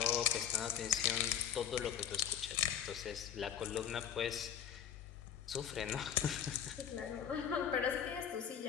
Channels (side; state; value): right; quieter; 9.4 dB